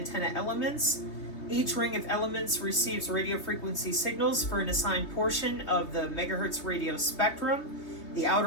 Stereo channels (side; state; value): right; late; 3.2 ms